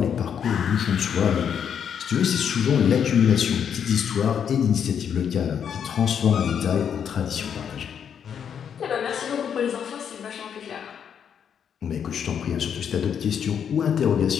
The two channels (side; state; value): right; quieter; 8.0 dB